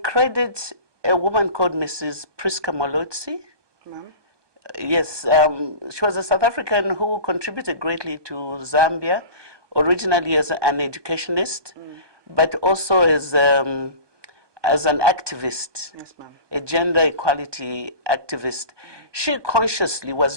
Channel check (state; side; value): late; left; 1.2 ms